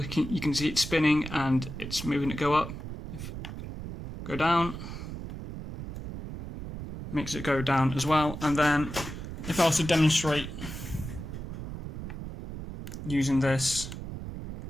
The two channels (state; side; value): noise; right; rumble, 9 dB below the sound